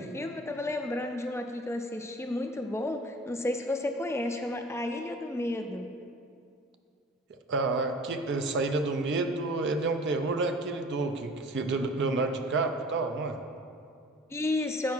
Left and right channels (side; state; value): both; normal; correlation 0.46